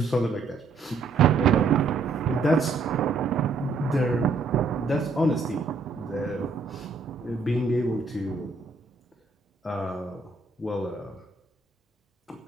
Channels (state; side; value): quieter; left; 4.1 dB